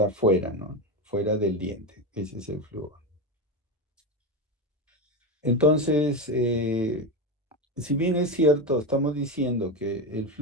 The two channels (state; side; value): normal; both; correlation 0.15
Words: fuera, ¿no? Fuera del diente. Ese es el flúor. Entonces, si bien es cierto, estamos diciendo que el